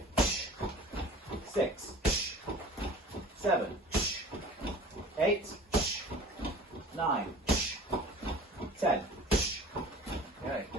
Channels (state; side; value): normal; both; correlation 0.43